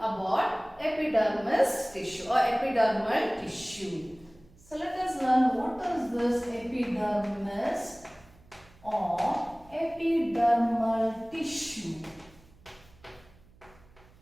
epidermis tissue or epidermal tissue. So let us learn what is this epidermis or epidermal tissue.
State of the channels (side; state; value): right; noise; hum, 27 dB below the sound